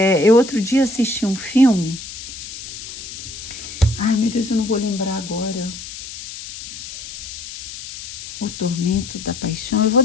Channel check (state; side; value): noise; left; hiss, 12 dB below the sound